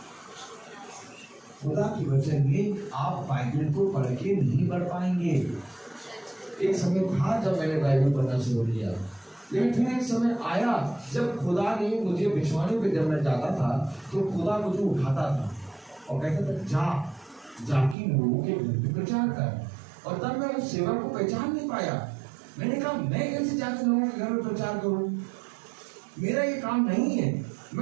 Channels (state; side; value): drops out; left; at 17.9 s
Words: खुदा के वचन में आप बाइबल को पढ़ के नहीं पढ़ पाएंगे। एक समय था जब मैंने बाइबल पढ़ना शुरू किया, लेकिन फिर एक समय आया जब खुदा ने मुझे विश्वानी पे जब मैं जाता था तो खुदा मुझे उठाता था और कहता था जाके लोगों के घर पे प्रचार कर। और तब मैं उस सेवा को पहचान नहीं पाया। मैंने कहा मैं कैसे जाके लोगों के घर में प्रचार करूं? मेरा ये काम नहीं है।